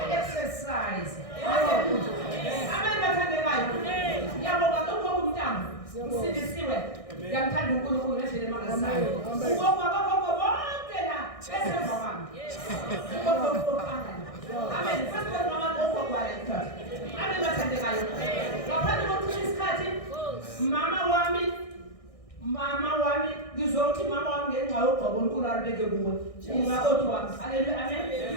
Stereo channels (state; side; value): late; right; 1.6 ms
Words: Hallelujah. Amen. Bathandekayo. Ngiyabonga lokho kumntamo. Usindisiwe. Ngiyamthanda uNkulunkulu ngendlela emangazayo. Ugogo abagogo bonke la besemva kwami. Amen. First of all, mama gogo kwala. Amen. Bathandekayo. Ngaphandle Uzothi mama wami ngenxa yogqobo uNkulunkulu alibeke kuwe. Umakoti wami. Haleluya.